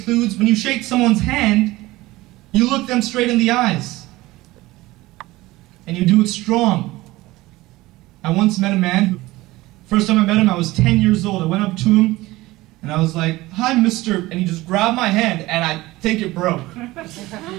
when you shake someone's hand, you look them straight in the eyes. And you do it strong. I once met a man who, first time I met him, I was 10 years old. I went up to him, and I was like, "Hi, mister," and he just grabbed my hand, and I think it broke.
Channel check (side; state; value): left; quieter; 19.1 dB